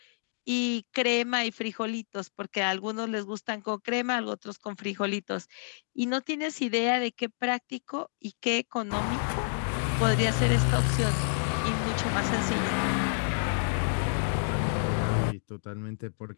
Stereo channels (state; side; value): silent; right; digital silence